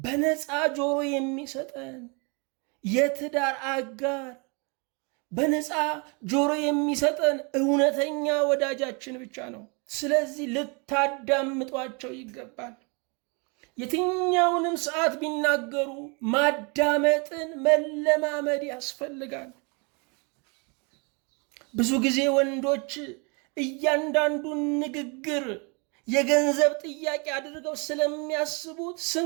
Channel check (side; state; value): left; quieter; 32.6 dB